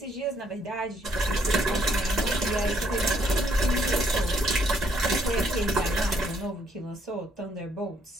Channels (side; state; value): both; normal; correlation 0.69